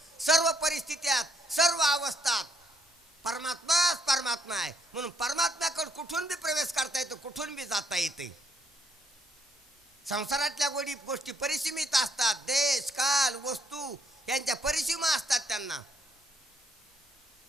सर्व परिस्थित्यात, सर्व अवस्थात परमात्माच परमात्मा आहे. म्हणून परमात्म्याकडे कुठून बी प्रवेश करता येतो, कुठून बी जाता येते. संसारातल्या गोष्टी परिसीमित असतात, देश काल वस्तू यांच्या परिसीमा असतात त्यांना.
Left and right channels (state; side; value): normal; both; correlation 0.70